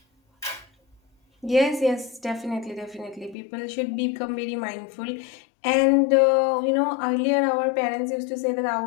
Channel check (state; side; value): drops out; right; at 3.4 s